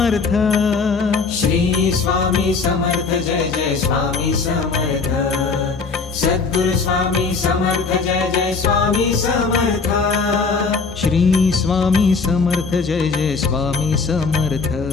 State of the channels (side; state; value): right; quieter; 4.6 dB